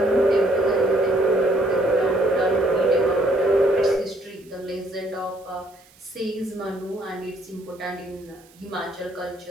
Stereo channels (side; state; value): right; noise; hiss, 28 dB below the sound